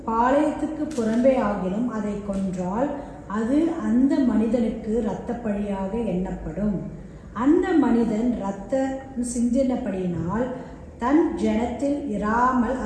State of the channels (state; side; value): identical; both; correlation 1.00